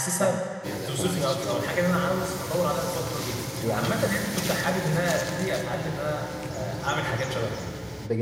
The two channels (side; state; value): both; identical; correlation 1.00